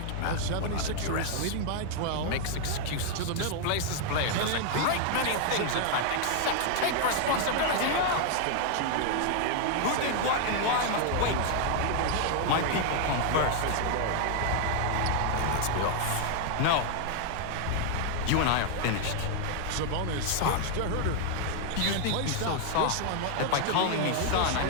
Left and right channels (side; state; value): both; different; correlation 0.00